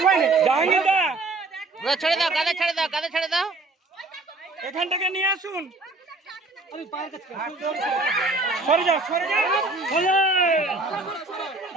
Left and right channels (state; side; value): quieter; left; 3.2 dB